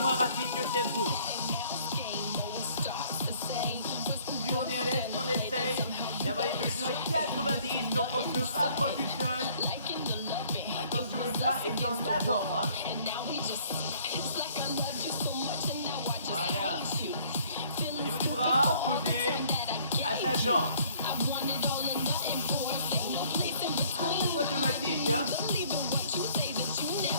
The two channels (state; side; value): inverted; both; correlation -0.59